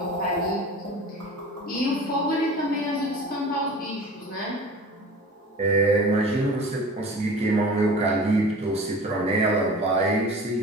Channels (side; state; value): both; normal; correlation 0.39